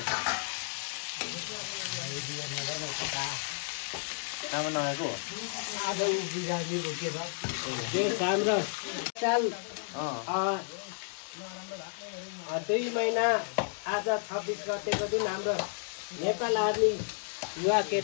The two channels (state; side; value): silent; right; digital silence